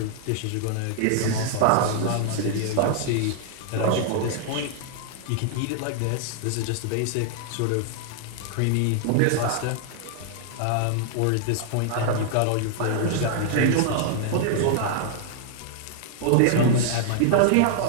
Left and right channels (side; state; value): both; different; correlation -0.01